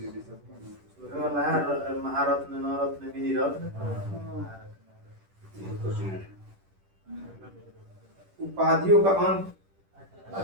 महारत्न नवरत्न विधि रत्न उपाधियों का अंत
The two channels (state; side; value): late; left; 10 ms